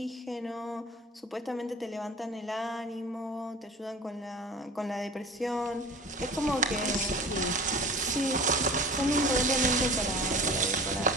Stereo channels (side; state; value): both; normal; correlation 0.39